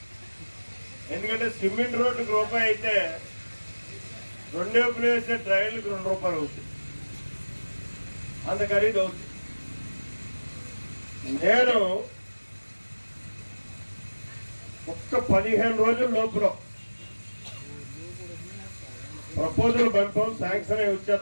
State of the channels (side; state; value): both; inverted; correlation -1.00